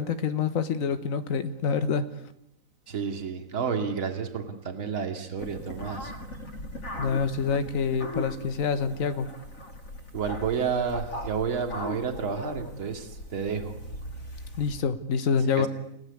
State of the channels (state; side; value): late; right; 4.0 ms